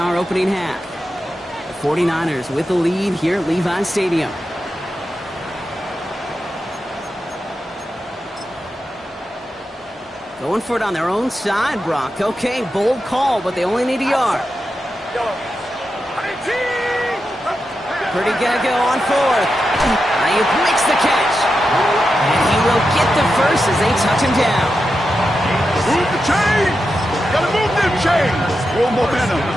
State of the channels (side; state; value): both; normal; correlation 0.89